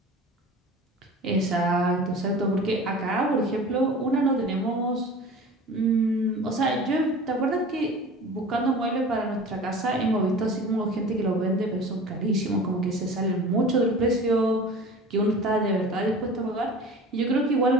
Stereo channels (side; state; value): both; normal; correlation 0.39